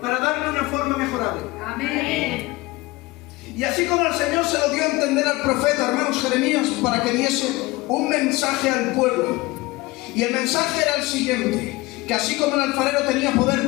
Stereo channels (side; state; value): right; quieter; 21.0 dB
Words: para darle una forma mejorable. Amén. Y así como el Señor se lo dio a entender al profeta, hermanos, Jeremías, para que diese un mensaje al pueblo. Y el mensaje era el siguiente: que así como el alfarero tenía poder